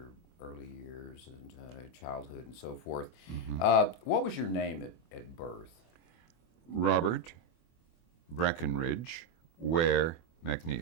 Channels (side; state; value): right; late; 24 ms